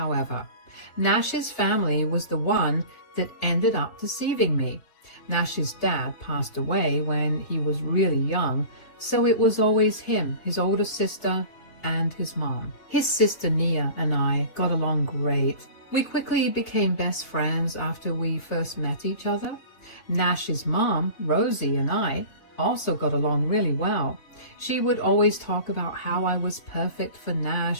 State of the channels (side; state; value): right; late; 3.5 ms